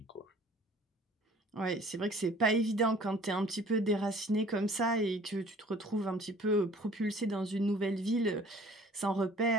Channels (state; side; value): normal; both; correlation 0.51